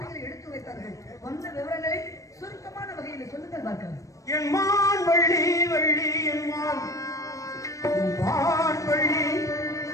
எடுத்து வைத்தார்கள். வந்த விவரங்களை சுருக்கமான வகையில் சொல்லுங்கள் பார்க்கலாம். என் மான் வள்ளி வள்ளி என் மான் வள்ளி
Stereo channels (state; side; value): late; right; 0.16 ms